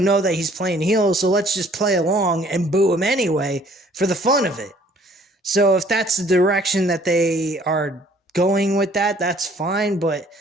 that he's playing heel, so let's just play along and boo him anyway for the fun of it. So if that's the direction that they are going with that, that's fine, but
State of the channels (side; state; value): both; normal; correlation 0.58